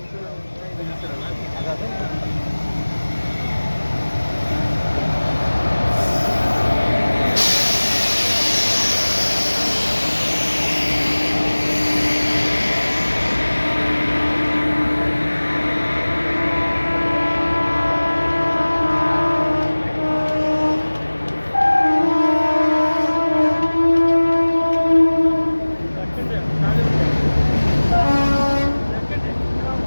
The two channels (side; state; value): both; inverted; correlation -1.00